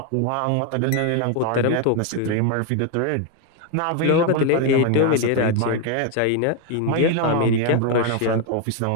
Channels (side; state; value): both; different; correlation 0.01